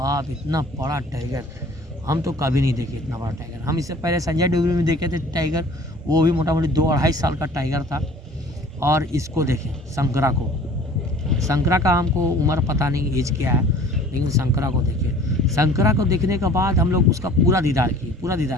इतना बड़ा टाइगर हम तो कभी नहीं देखे, इतना बड़ा टाइगर। हम इससे पहले संजय डोगरी में देखे थे टाइगर, वो भी मोटा मोटी 2-2.5 साल का टाइगर था। और इसको देखें शंकरा का हमको उम्र पता नहीं एज क्या है, लेकिन शंकरा को देखे। शंकरा को देखने के बाद हम लोग उसका पूरा दीदार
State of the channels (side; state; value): both; normal; correlation 0.48